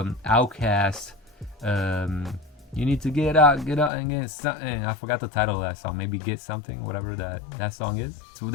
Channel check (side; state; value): right; drops out; at 3.9 s